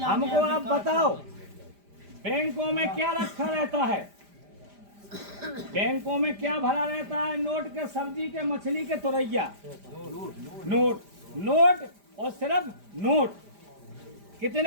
आप बताओ, बैंकों में क्या रखा रहता है? बैंकों में क्या भरा रहता है? नोट के, सब्जी के, मछली के, तुरैया। नोट, नोट और सिर्फ नोट।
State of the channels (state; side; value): late; left; 5.0 ms